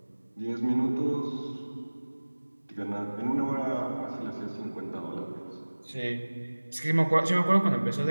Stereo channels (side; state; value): both; inverted; correlation -1.00